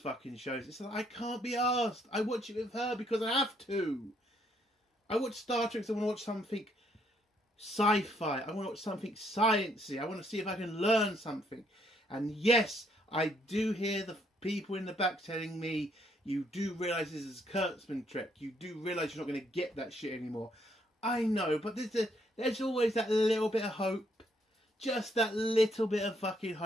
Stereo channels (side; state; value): both; normal; correlation 0.71